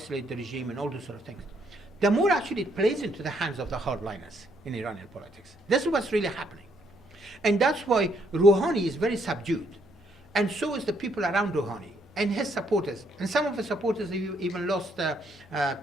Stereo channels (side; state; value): both; normal; correlation 0.71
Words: the regime and all those sort of things, the more actually it plays into the hands of the hardliners in Iranian politics. This is what's really happening. And that's why Rouhani is very subdued. And so is the people around Rouhani and his supporters. And some of the supporters even lost